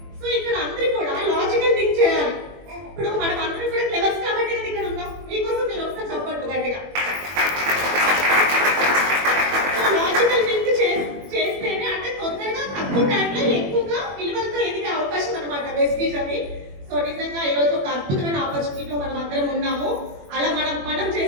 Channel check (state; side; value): late; left; 21 ms